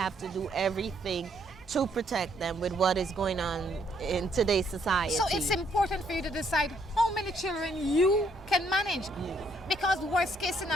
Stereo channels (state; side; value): normal; both; correlation 0.70